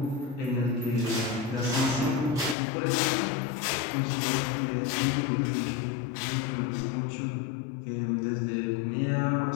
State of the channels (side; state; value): right; drops out; at 2.6 s